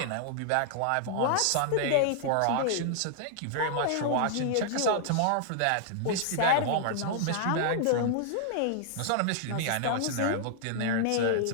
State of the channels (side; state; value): both; different; correlation -0.01